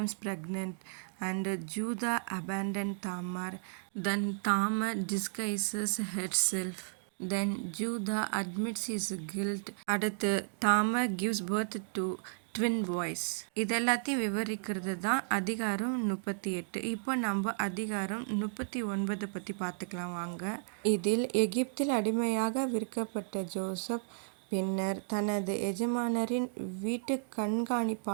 pregnant and Judah abandoned Tamar. Then Tamar disguises herself. Then Judah admits his guilt. அடுத்து தாமர் gives birth to twin boys. இதெல்லாத்தையும் விவரிக்கிறது தான் அதிகாரம் 38. இப்போ நம்ம அதிகாரம் 39 பற்றி பார்த்துக்கலாம் வாங்க. இதில் எகிப்தில் அடிமையாக விற்கப்பட்ட ஜோசப் பின்னர் தனது எஜமானரின் வீட்டு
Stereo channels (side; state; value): left; silent; digital silence